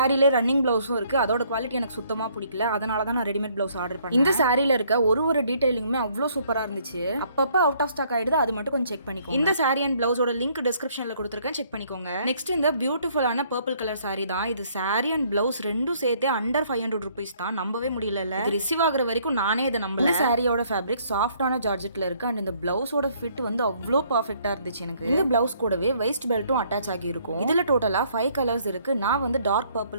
ரன்னிங் பிளவுஸும் இருக்கு. அதோட குவாலிட்டி எனக்கு சுத்தமா பிடிக்கல. அதனால தான் நான் ரெடிமேட் பிளவுஸ் ஆர்டர் பண்ணேன். இந்த சாரியில இருக்க ஒரு டீடைலிங்குமே அவ்வளோ சூப்பரா இருந்துச்சு. அப்பப்ப அவுட் ஆஃப் ஸ்டாக் ஆயிடுது. அது மட்டும் கொஞ்சம் செக் பண்ணிக்கோங்க. இந்த சாரி அண்ட் பிளவுஸோட லிங்க் டிஸ்கிரிப்ஷன்ல கொடுத்திருக்கேன், செக் பண்ணிக்கோங்க. நெக்ஸ்ட் இந்த பியூட்டிஃபுல்லான பர்பிள் கலர் சாரி தான். இது சாரி அண்ட் பிளவுஸ் ரெண்டும் சேர்த்து அண்டர் 500 rupees தான். நம்பவே முடியல. இது ரிசீவ் ஆகுற வரைக்கும் நானே இதை நம்பல. இந்த சாரியோட ஃபேப்ரிக் சாஃப்டான ஜார்ஜெட்ல இருக்கு அண்ட் இந்த பிளவுஸோட ஃபிட் வந்து அவ்வளோ பர்ஃபெக்ட்டா இருந்துச்சு எனக்கு. இந்த பிளவுஸ் கூடவே வெஸ்ட் பெல்ட்டும் அட்டாச் ஆகி இருக்கும். இதுல டோட்டலா 5 கலர்ஸ் இருக்கு. நான் வந்து டார்க்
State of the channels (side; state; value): both; inverted; correlation -0.64